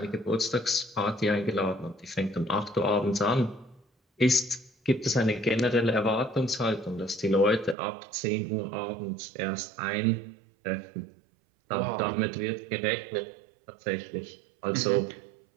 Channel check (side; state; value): left; drops out; at 7.8 s